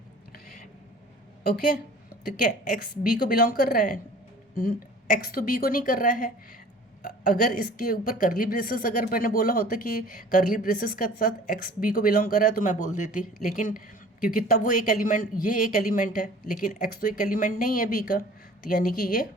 ओके, तो क्या x b को बिलोंग कर रहा है, x तो b को नहीं कर रहा है। अगर इसके ऊपर करली ब्रेसेस अगर मैंने बोला होता कि करली ब्रेसेस के साथ x b को बिलोंग कर रहा है तो मैं बोल देती, लेकिन क्योंकि तब वो एक एलिमेंट, ये एक एलिमेंट है, लेकिन x तो एक एलिमेंट नहीं है b का, तो यानी कि ये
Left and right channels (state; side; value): normal; both; correlation 0.47